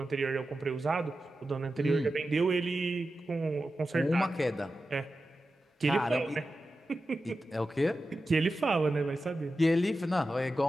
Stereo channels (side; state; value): both; normal; correlation 0.92